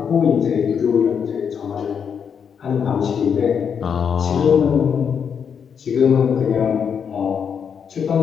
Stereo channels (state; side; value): quieter; right; 7.1 dB